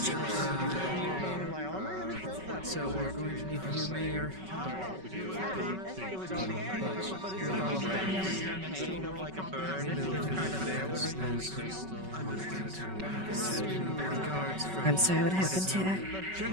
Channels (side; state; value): left; late; 5.3 ms